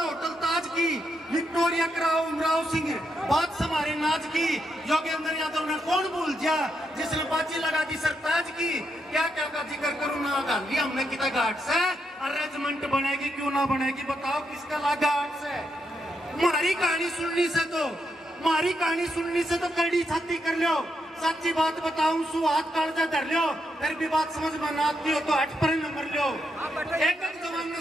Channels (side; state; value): both; normal; correlation 0.81